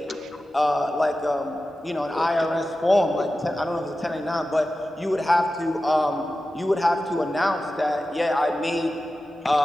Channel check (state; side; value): normal; both; correlation 0.94